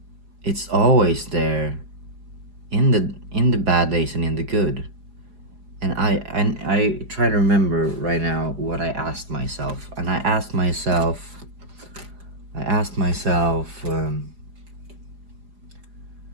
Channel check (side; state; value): left; late; 4.9 ms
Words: it's always there, in the bad days and in the good. And I try to remember right now what I asked myself. And I asked myself,